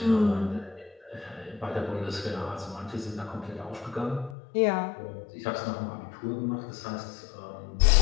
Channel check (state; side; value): drops out; right; at 4.4 s